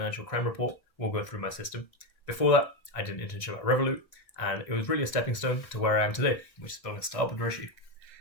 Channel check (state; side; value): late; right; 1.5 ms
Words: crime report will go through my system. Before that, I did an internship at Revolut, and it was really a stepping stone to where I am today, which is building a startup with Rishi.